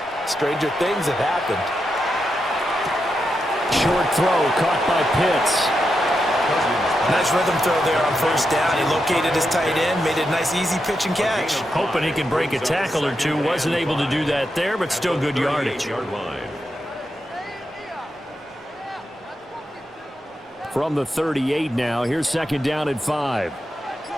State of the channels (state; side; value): normal; both; correlation 0.86